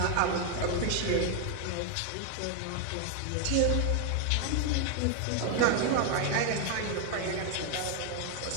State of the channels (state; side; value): different; both; correlation 0.00